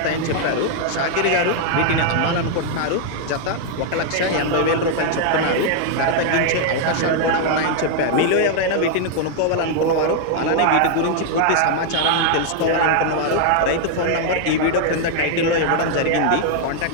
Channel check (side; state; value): both; different; correlation 0.00